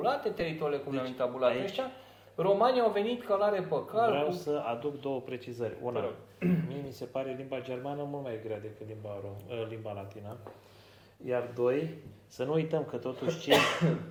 teritoriile cum le-au intabulat ăștia. Romanii au venit călare pe cal. Vreau să aduc două precizări. Una, mie mi se pare limba germană mult mai grea decât limba latină. Iar doi, să nu uităm că totuși cei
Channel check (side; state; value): both; identical; correlation 1.00